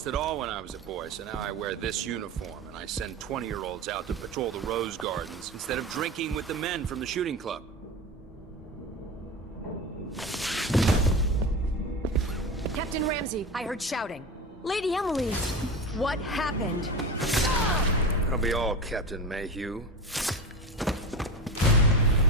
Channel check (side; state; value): both; normal; correlation 0.26